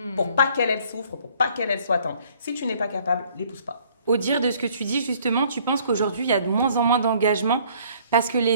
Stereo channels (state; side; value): inverted; both; correlation -0.59